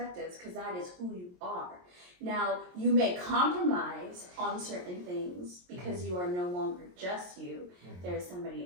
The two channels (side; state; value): left; late; 22 ms